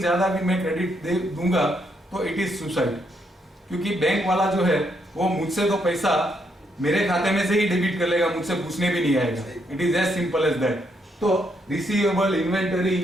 भी मैं क्रेडिट दे दूंगा तो इट इज सुसाइड, क्योंकि बैंक वाला जो है वो मुझसे तो पैसा मेरे खाते में से ही डेबिट कर लेगा, मुझसे पूछने भी नहीं आएगा। It is as simple as that. तो रिसीवेबल, इन्वेंटरी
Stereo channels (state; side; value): normal; both; correlation 0.76